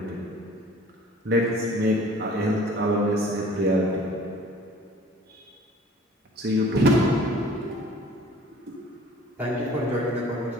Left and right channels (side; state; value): both; normal; correlation 0.50